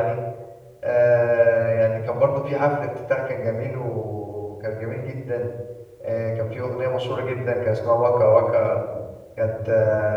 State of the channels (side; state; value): both; identical; correlation 1.00